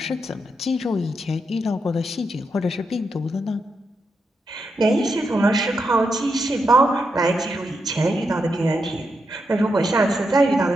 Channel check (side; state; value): both; normal; correlation 0.84